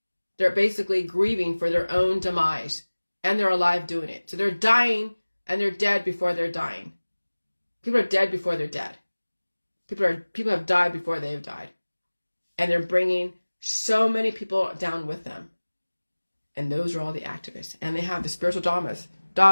They're basically grieving for their own demise, and they're alive doing it. So they're dying, and they're dead before they're dying. People are dead before they're dead. People have died before they have died. And they're bringing so many people down with them. And those are all the activists. And they have the spiritual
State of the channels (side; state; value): both; inverted; correlation -1.00